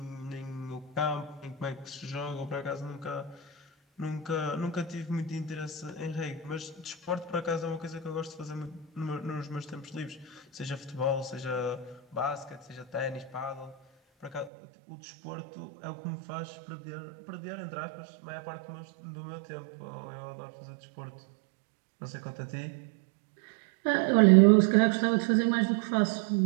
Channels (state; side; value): drops out; left; at 14.5 s